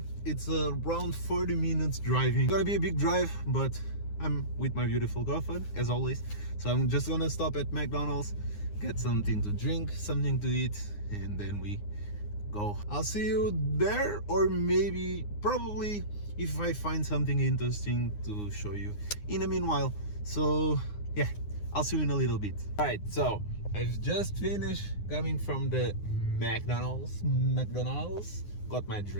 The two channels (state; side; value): late; right; 9.7 ms